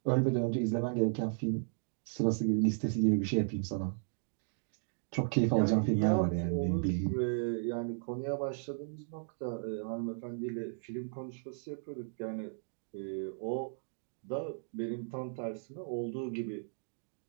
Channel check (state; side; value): silent; left; digital silence